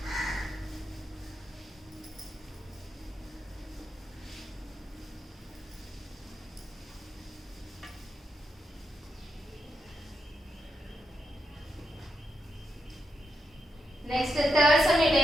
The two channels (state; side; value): normal; both; correlation 0.84